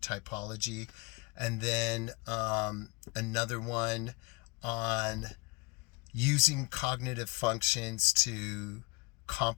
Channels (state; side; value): quieter; right; 27.9 dB